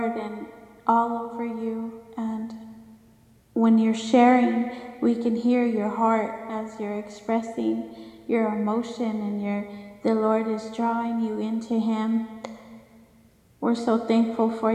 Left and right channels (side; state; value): both; identical; correlation 1.00